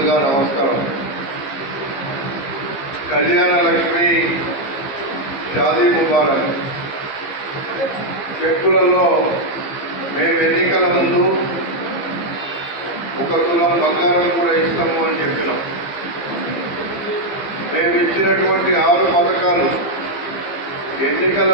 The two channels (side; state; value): right; late; 15 ms